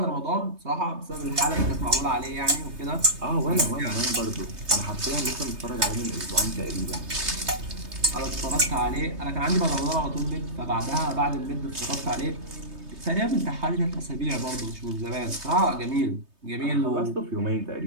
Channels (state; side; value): late; left; 3.2 ms